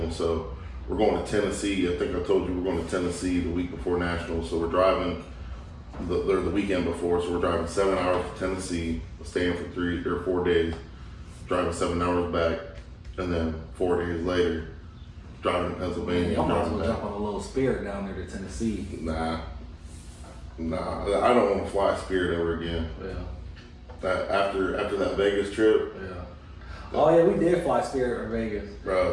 So we're going to Tennessee. I think I told you we're going to Tennessee the week before nationals. So we're driving the weekend before. So we're driving 7 hours to Tennessee, staying for 3 or 4 days, driving 7 hours back, and then 4 days later, driving to Pennsylvania. Y'all might as driving well back. jump on a little Spirit down there to Tennessee. Nah, I don't want to fly Spirit ever again. Yeah. That after that Vegas trip, Yeah. Oh yeah, we did fly Spirit in Vegas.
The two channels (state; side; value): identical; both; correlation 1.00